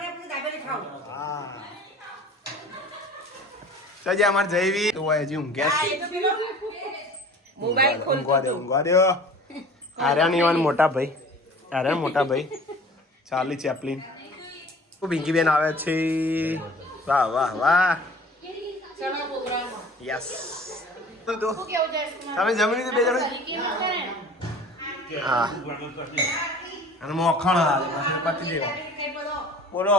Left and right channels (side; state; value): both; normal; correlation 0.45